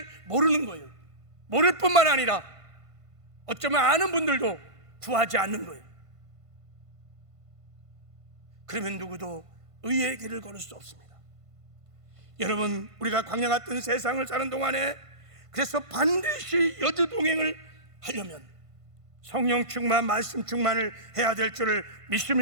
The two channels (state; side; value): late; left; 1.5 ms